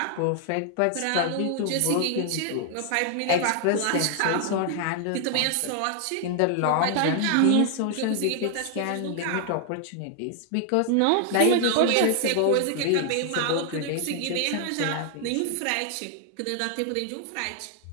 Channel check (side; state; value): both; different; correlation 0.00